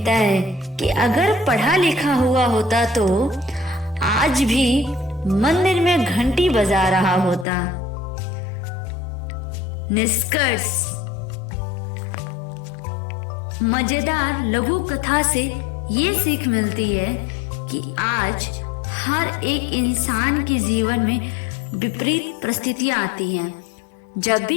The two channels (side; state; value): right; drops out; at 7.5 s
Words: है कि अगर पढ़ा लिखा हुआ होता तो आज भी मंदिर में घंटी बजा रहा होता। निष्कर्ष, मजेदार लघु कथा से ये सीख मिलती है कि आज हर एक इंसान के जीवन में विपरीत परिस्थितियां आती हैं। जब